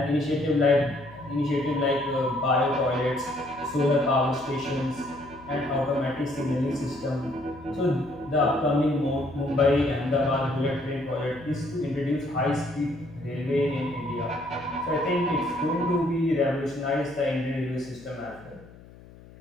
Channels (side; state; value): left; noise; hum, 21 dB below the sound